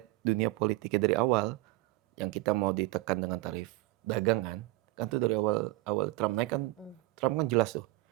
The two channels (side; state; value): left; quieter; 19.9 dB